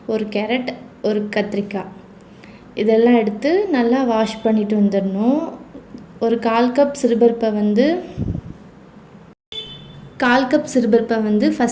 1 கேரட், 1 கத்திரிக்காய் இதெல்லாம் எடுத்து நல்லா வாஷ் பண்ணிவிட்டு வந்துடணும். ஒரு 1/4 கப் சிறுபருப்பை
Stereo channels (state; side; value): identical; both; correlation 1.00